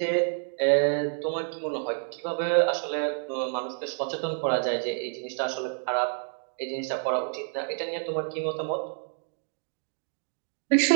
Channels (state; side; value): silent; left; 59 dB below the other